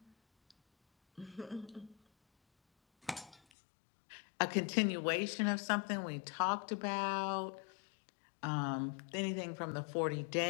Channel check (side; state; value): right; drops out; at 3.4 s